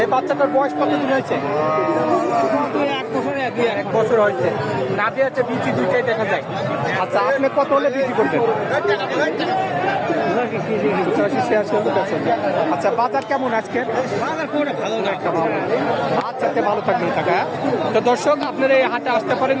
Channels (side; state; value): both; identical; correlation 1.00